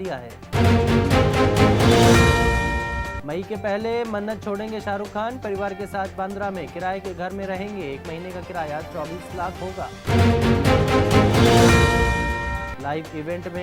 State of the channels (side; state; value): both; identical; correlation 1.00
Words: है। मई के पहले मन्नत छोड़ेंगे शाहरुख खान, परिवार के साथ बांद्रा में किराए के घर में रहेंगे, 1 महीने का किराया 24 लाख होगा। लाइव इवेंट